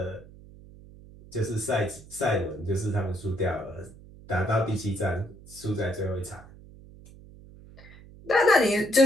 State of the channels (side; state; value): right; noise; hum, 20 dB below the sound